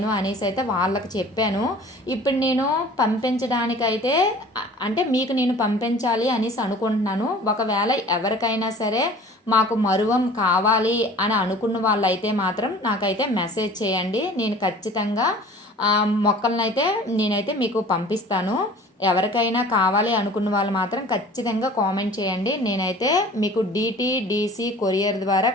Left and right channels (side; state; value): both; normal; correlation 0.46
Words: అనేసి అయితే వాళ్ళకి చెప్పాను. ఇప్పుడు నేను పంపించడానికైతే అంటే మీకు నేను పంపించాలి అనేసి అనుకుంటున్నాను. ఒకవేళ ఎవరికైనా సరే మాకు మరువం కావాలి అని అనుకున్న వాళ్ళైతే మాత్రం నాకైతే మెసేజ్ చేయండి. నేను ఖచ్చితంగా మొక్కలనైతే నేనైతే మీకు పంపిస్తాను. ఎవరికైనా కావాలి అనుకున్న వాళ్ళు మాత్రం ఖచ్చితంగా కామెంట్ చేయండి. నేనైతే మీకు DTDC కొరియర్ ద్వారా